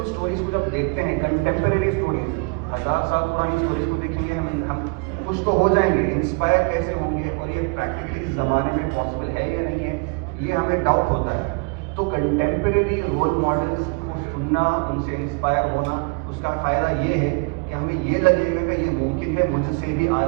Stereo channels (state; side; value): quieter; left; 33.8 dB